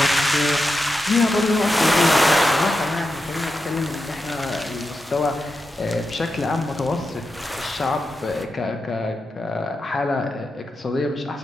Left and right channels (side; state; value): both; normal; correlation 0.88